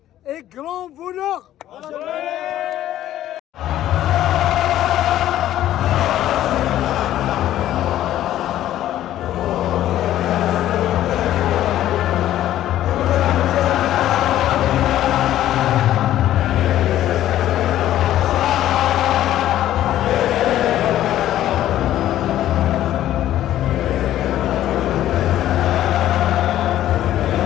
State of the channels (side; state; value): right; quieter; 12.8 dB